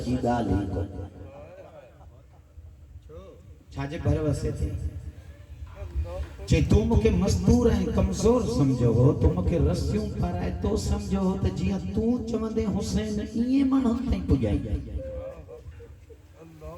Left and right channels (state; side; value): identical; both; correlation 1.00